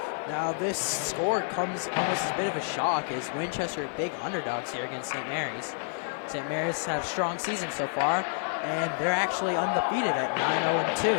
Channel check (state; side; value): silent; right; digital silence